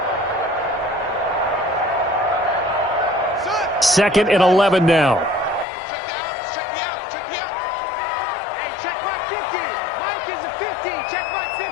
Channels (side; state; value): right; drops out; at 5.7 s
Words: Second and 11 now.